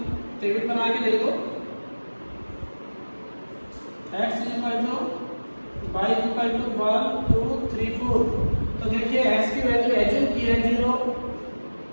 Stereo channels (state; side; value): inverted; both; correlation -1.00